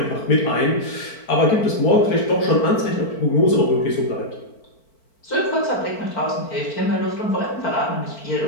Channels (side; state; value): right; late; 4.5 ms